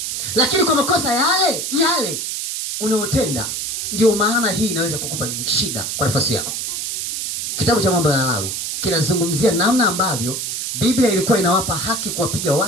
Lakini kwa makosa yale unaotenda, ndio maana hii inaweza kukupa shida kwa nafasi yako. Kitabu cha Mambo ya Lawi kinazungumzia namna ambavyo Biblia ilikuwa inawapa haki kuwapiga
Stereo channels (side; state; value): right; noise; hiss, 3 dB below the sound